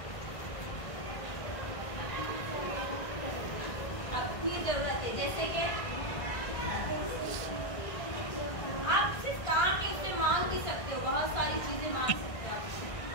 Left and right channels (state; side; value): late; right; 1.5 ms